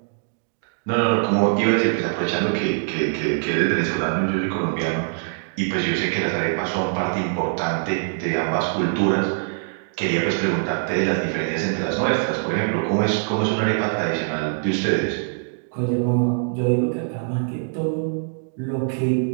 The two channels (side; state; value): left; silent; digital silence